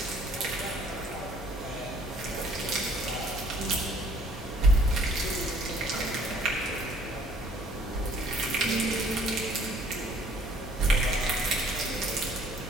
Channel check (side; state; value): both; normal; correlation 0.58